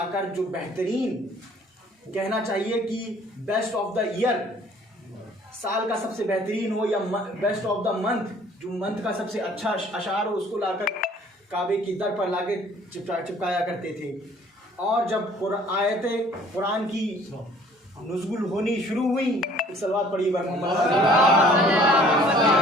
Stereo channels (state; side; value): normal; both; correlation 0.55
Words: जो बेहतरीन, कहना चाहिए कि बेस्ट ऑफ द ईयर, साल का सबसे बेहतरीन हो, या बेस्ट ऑफ द मंथ, जो मंथ का सबसे अच्छा अशार हो, उसको लाकर काबे की दर पर लाके चिपकाया करते थे। और जब आयतें कुरान की नुज़ुल होनी शुरू हुई, सलवात पढ़ी